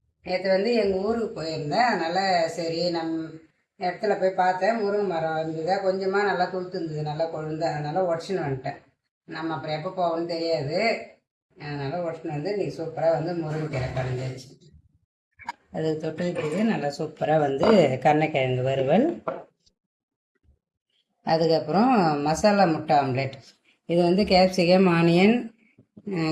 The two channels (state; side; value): identical; both; correlation 1.00